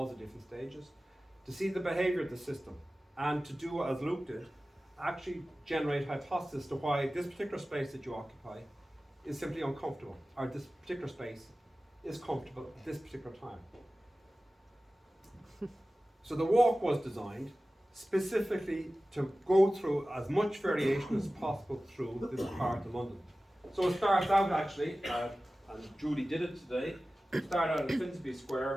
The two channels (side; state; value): both; normal; correlation 0.96